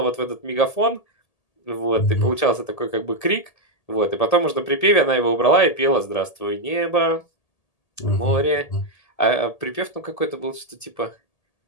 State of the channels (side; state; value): right; late; 1.8 ms